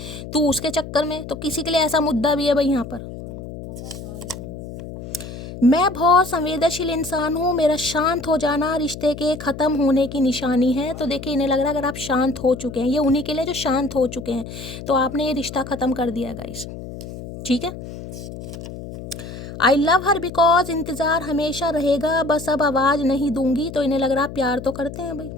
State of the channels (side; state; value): left; noise; hum, 11 dB below the sound